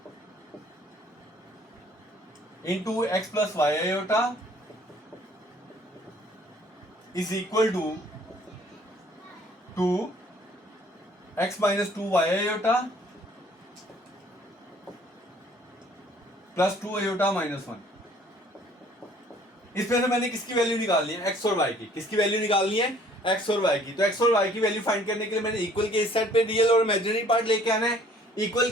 into x plus y iota is equal to 2 x minus 2 y iota plus 2 iota minus 1। इसमें से मैंने किसकी वैल्यू निकालनी है, एक्स और वाई की। किसकी वैल्यू निकालनी है, एक्स और वाई की। तो एक्स और वाई की वैल्यू फाइंड करने के लिए मैंने इक्वल के इस साइड पे रियल और इमेजिनरी पार्ट लेके आना है, इक्वल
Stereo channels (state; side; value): normal; both; correlation 0.57